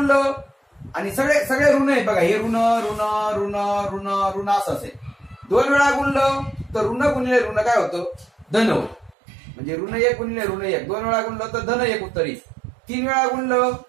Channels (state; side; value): drops out; left; at 9.2 s